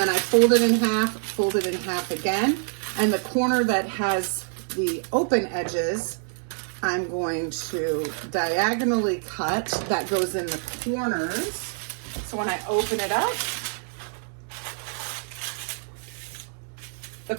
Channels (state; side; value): silent; left; 61 dB below the other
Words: I fold it in half again, and the corner that has the open edges I'm going to diagonally cut. That goes in the corners, so when I open it up, the